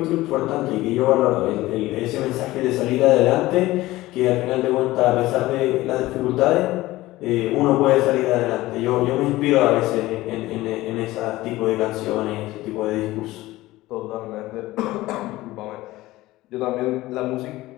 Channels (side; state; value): right; quieter; 17.7 dB